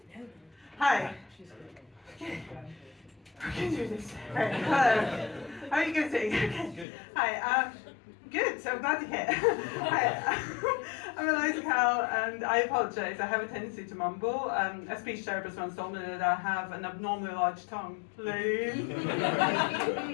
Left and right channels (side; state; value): right; drops out; at 6.9 s